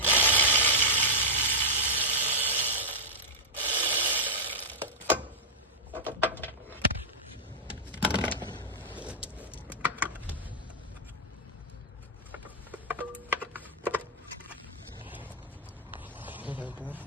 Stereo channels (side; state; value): both; normal; correlation -0.07